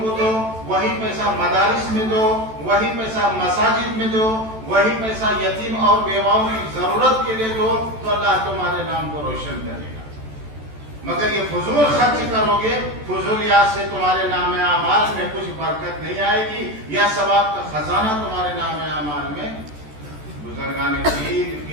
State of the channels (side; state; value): left; late; 14 ms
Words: کو دو, وہی پیسہ مدارس میں دو, وہی پیسہ مساجد میں دو, وہی پیسہ یتیم اور بیواؤں کی ضرورت کے لیے دو, تو اللہ تمہارے نام کو روشن کرے گا. مگر یہ فضول خرچ کرو گے, فضولیات سے تمہارے نام اعمال میں کچھ برکت نہیں آئے گی, یا ثواب کا خزانہ تمہارے نام اعمال میں. بزرگان دین